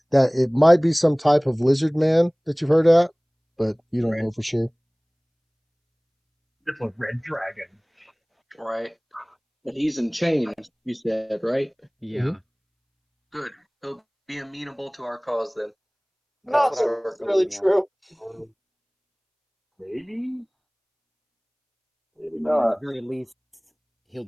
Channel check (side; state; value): both; identical; correlation 1.00